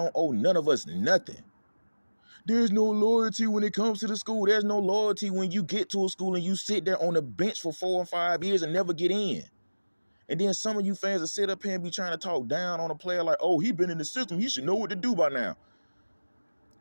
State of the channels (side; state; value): both; inverted; correlation -1.00